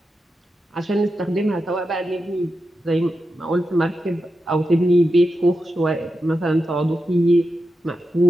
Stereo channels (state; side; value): normal; both; correlation 0.89